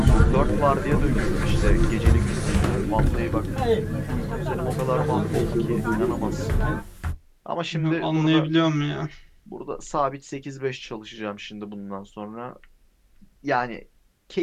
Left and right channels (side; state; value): both; identical; correlation 1.00